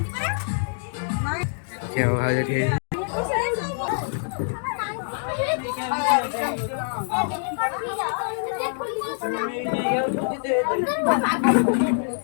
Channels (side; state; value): right; silent; digital silence